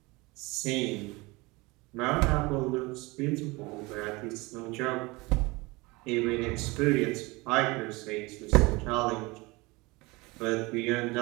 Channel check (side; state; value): left; quieter; 23.8 dB